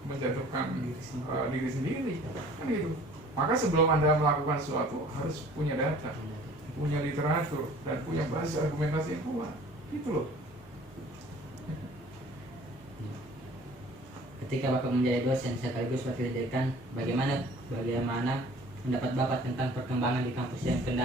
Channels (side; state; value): both; normal; correlation 0.50